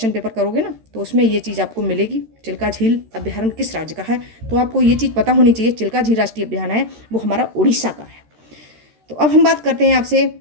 पेपर करोगे ना तो उसमें ये चीज़ आपको मिलेगी, चिल्का झील अभ्यारण्य किस राज्य का है, तो आपको ये चीज़ पता होनी चाहिए। चिल्का झील राष्ट्रीय अभ्यारण्य है वो हमारा उड़ीसा का है। तो अब हम बात करते हैं आपसे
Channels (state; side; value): late; left; 13 ms